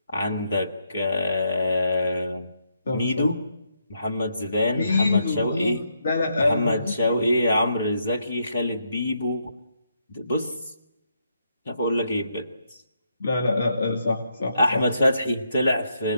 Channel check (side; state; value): both; inverted; correlation -0.78